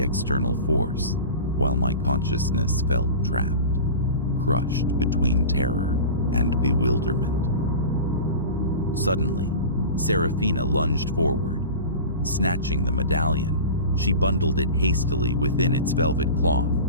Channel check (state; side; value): inverted; both; correlation -0.33